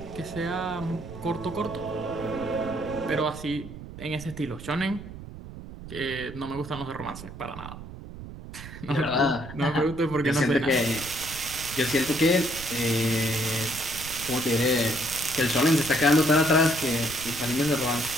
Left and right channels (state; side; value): noise; right; rumble, 13 dB below the sound